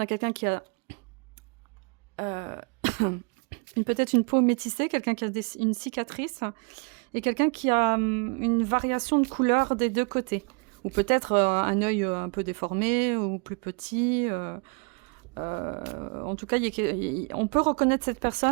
a quelqu'un qui a... peut-être une peau métissée, quelqu'un qui a une cicatrice, et quelqu'un qui a une variation de couleur des deux côtés. Ou peut-être un œil un peu déformé, ou plus petit. En tout cas, on peut reconnaître cette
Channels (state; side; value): quieter; left; 33.8 dB